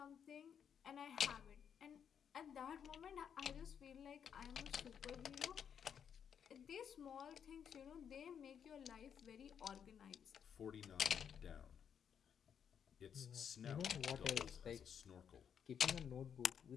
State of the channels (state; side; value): quieter; right; 7.9 dB